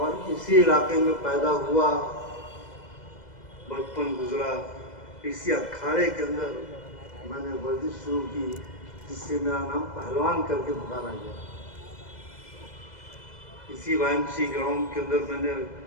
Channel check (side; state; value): right; late; 2.0 ms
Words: इसी इलाके में पैदा हुआ, बचपन गुजरा, इसी अखाड़े के अंदर मैंने वर्जिश शुरू की, जिससे मेरा नाम पहलवान करके पुकारा गया। इसी वाइएमसी ग्राउंड के अंदर मैंने